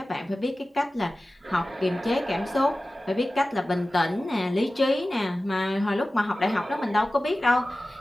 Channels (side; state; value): both; normal; correlation 0.96